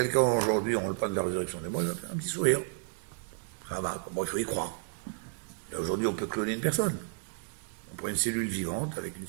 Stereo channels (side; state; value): left; silent; digital silence